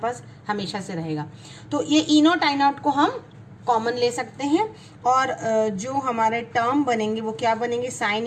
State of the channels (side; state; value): both; identical; correlation 1.00